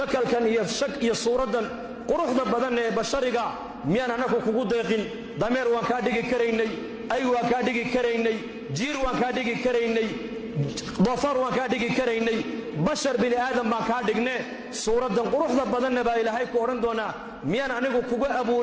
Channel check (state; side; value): identical; both; correlation 1.00